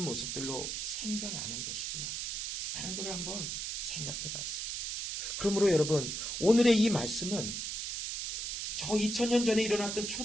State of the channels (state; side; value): noise; right; hiss, 3 dB below the sound